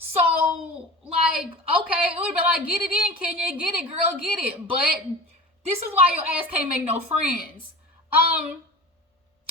like, okay, it would have been like, get it in, Kenya, get it, girl, get it. But this is why your ass can't make no friends.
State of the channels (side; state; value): both; normal; correlation 0.34